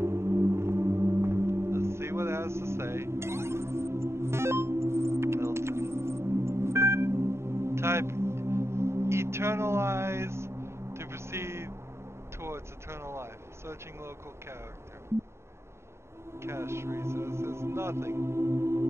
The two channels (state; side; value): late; left; 0.13 ms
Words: eternalize to proceed towards eternal life. Searching local character. Cache resources, nothing.